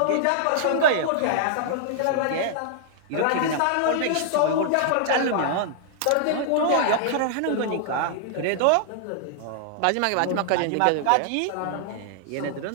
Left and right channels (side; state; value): both; different; correlation -0.01